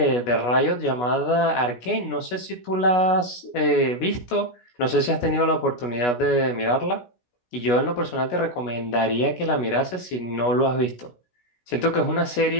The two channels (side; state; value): right; late; 16 ms